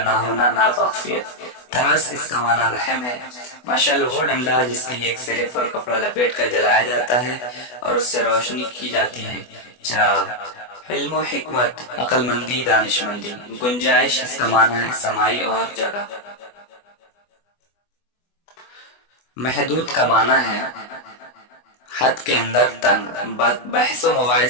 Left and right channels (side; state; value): right; late; 24 ms